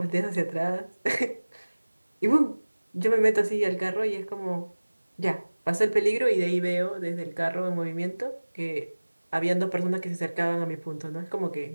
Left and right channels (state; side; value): inverted; both; correlation -1.00